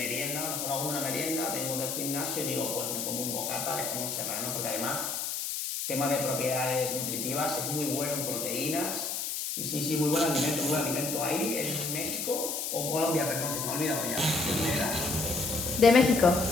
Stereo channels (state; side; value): noise; left; hiss, 3 dB below the sound